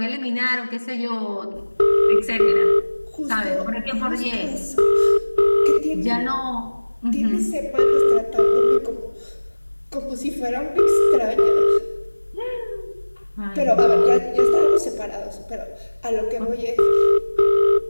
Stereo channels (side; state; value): both; inverted; correlation -1.00